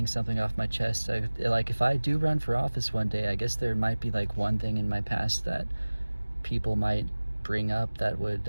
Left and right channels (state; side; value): inverted; both; correlation -1.00